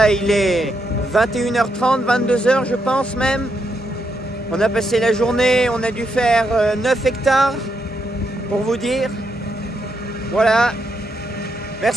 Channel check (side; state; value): both; normal; correlation 0.80